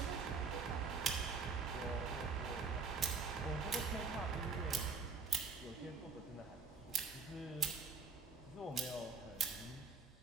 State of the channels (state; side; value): quieter; left; 5.0 dB